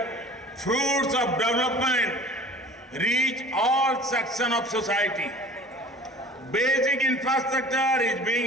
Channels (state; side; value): normal; both; correlation 0.43